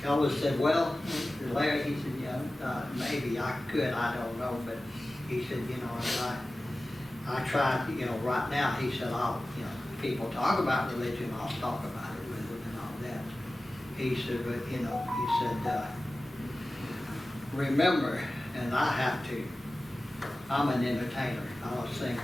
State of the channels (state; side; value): normal; both; correlation 0.96